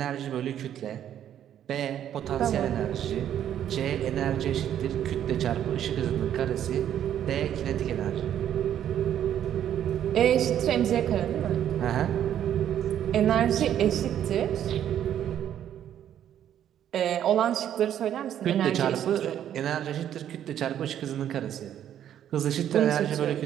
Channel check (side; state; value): left; quieter; 10.4 dB